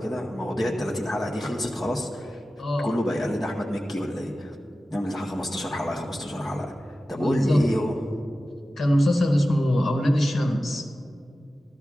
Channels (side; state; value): both; normal; correlation 0.95